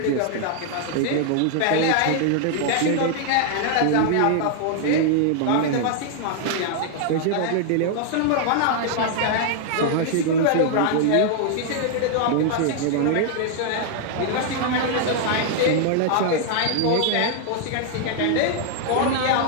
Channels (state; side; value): different; both; correlation 0.00